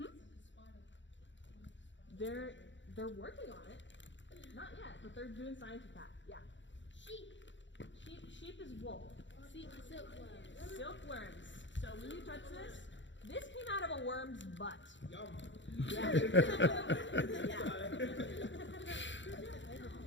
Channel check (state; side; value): late; right; 0.54 ms